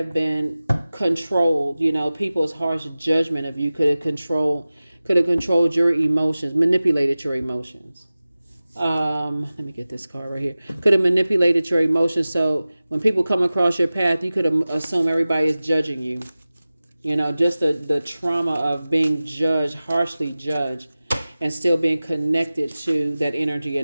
been controlled. You know, people's harsh judgment of you could have controlled your emotions, manipulated your emotions. Let me get this card right here. Could have manipulated your emotions. So when people come across your path, you could assume everybody is judging you. You know, just the trauma of being judged, harshly judged, and still being connected to that energy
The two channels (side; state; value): both; inverted; correlation -0.96